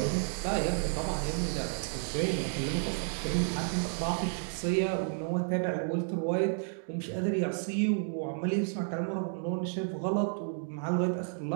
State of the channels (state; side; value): silent; left; digital silence